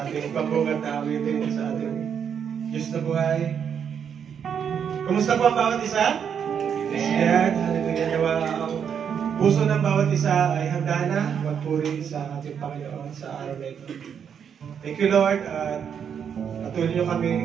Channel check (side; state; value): left; quieter; 7.7 dB